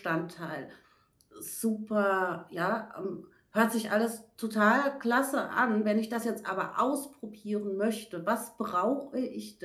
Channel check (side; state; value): both; identical; correlation 1.00